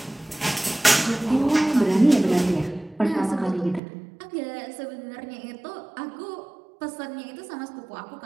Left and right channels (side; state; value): left; drops out; at 3.8 s